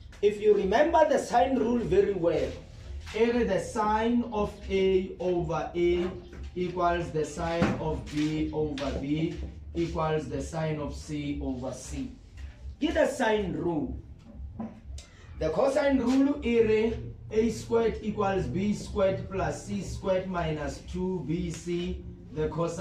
If you remember the sine rule very well, the sine of A over A equals the sine of B over B equals the sine of C over C. Get the sine rule. The cosine rule is A squared equals B squared plus C squared minus 2BC, the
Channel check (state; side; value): identical; both; correlation 1.00